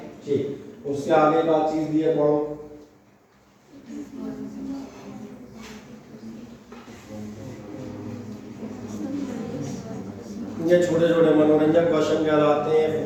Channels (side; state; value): both; identical; correlation 1.00